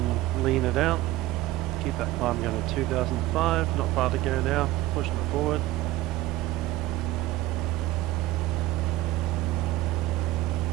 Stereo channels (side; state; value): left; quieter; 16.6 dB